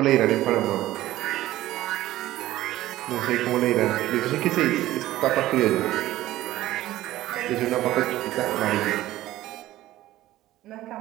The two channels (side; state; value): left; quieter; 15.4 dB